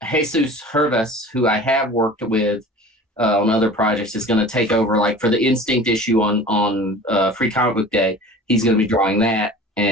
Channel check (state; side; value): normal; both; correlation 0.41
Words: Jesus Herves, who I have worked with on other projects, is going to take over. Like for the Instinct issue on Free Comic Book Day, he's going to be drawing that,